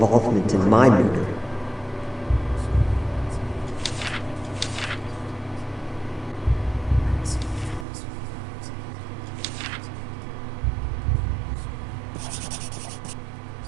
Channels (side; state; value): left; drops out; at 7.9 s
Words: in my murder.